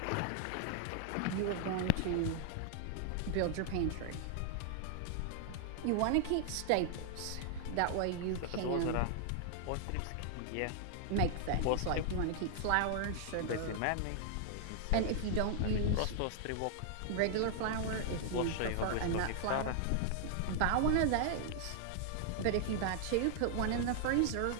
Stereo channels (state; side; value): different; both; correlation 0.00